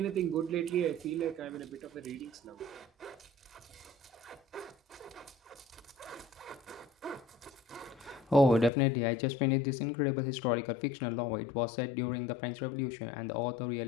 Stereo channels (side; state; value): right; drops out; at 8.7 s